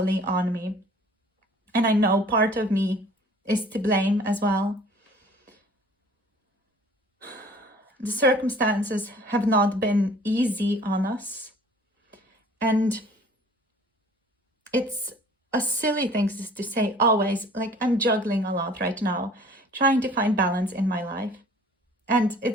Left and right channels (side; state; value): both; normal; correlation 0.50